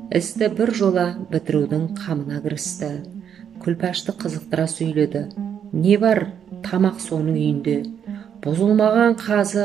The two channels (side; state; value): left; quieter; 8.4 dB